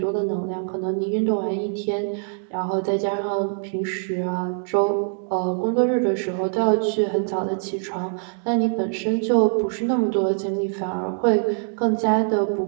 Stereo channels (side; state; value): left; silent; 63 dB below the other